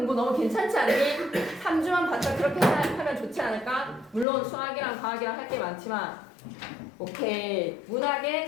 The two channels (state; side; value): drops out; right; at 4.2 s